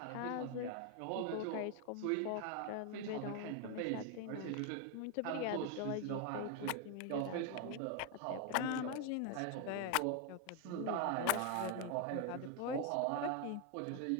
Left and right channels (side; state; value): both; different; correlation 0.01